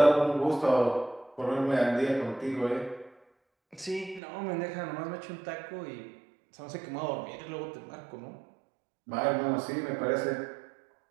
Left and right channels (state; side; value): drops out; left; at 4.2 s